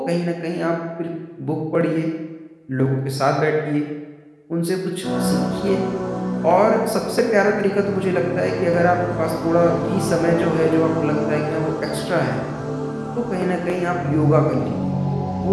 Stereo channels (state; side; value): identical; both; correlation 1.00